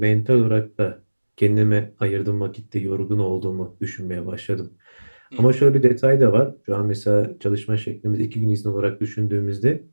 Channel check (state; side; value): inverted; both; correlation -1.00